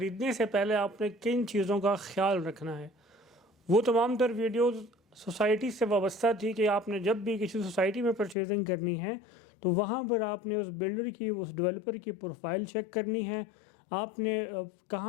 سے پہلے آپ نے کن چیزوں کا خیال رکھنا ہے۔ وہ تمام تر ویڈیوز سوسائٹی سے وابستہ تھی کہ آپ نے جب بھی کسی سوسائٹی میں پرچیزنگ کرنی ہے تو وہاں پر آپ نے اس بلڈر کی اس ڈیولپر کی پروفائل چیک کرنی ہے، آپ نے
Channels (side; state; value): right; drops out; at 8.3 s